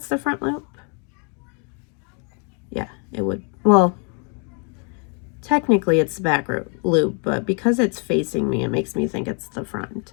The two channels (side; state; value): right; quieter; 37.9 dB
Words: the front loop. Yeah, it would. Well, technically it's the back loop, but because it's facing me, it makes me think it's the front.